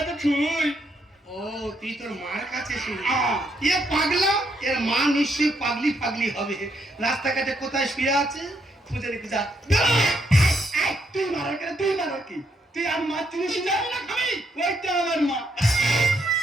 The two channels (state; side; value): normal; both; correlation 0.76